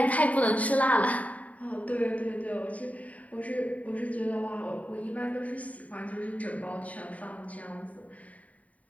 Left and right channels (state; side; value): late; right; 0.070 ms